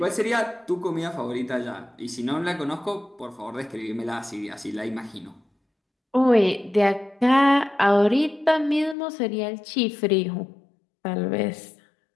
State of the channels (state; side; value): drops out; right; at 9.0 s